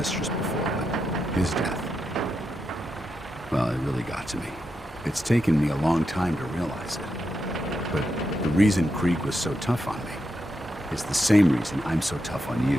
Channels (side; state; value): both; normal; correlation 0.85